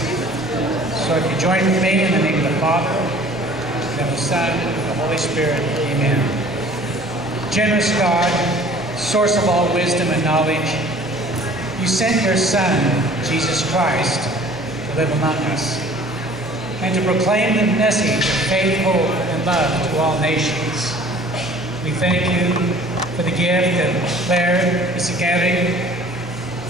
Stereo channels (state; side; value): normal; both; correlation 0.50